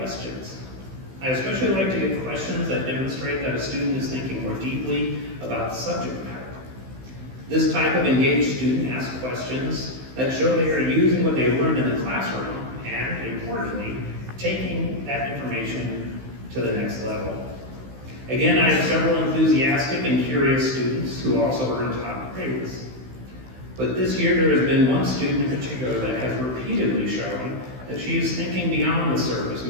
I especially like to get questions that demonstrate that a student is thinking more deeply about the subject matter. This type of engaged student asks questions that show they are using what they learned in the classroom and, importantly, taking that information to the next level. Again, I have several enthusiastic and curious students who also earn top grades. But this year there has been one student in particular that has repeatedly shown that she is thinking beyond the surface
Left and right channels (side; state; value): left; late; 16 ms